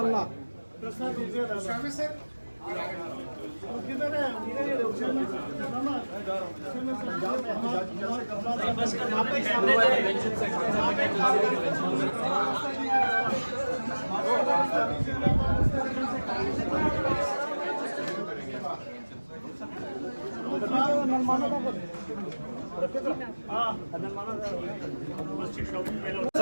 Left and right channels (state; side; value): inverted; both; correlation -1.00